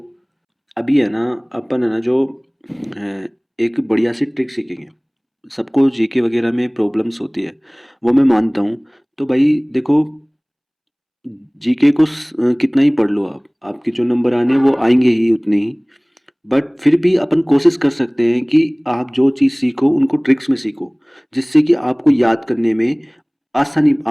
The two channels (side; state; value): both; identical; correlation 1.00